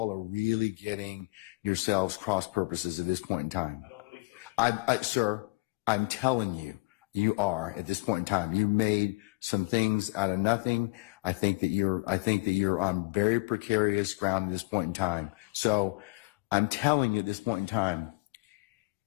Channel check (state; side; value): quieter; right; 27.0 dB